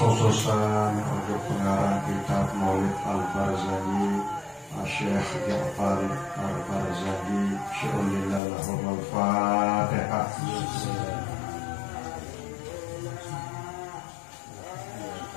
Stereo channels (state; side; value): drops out; right; at 8.4 s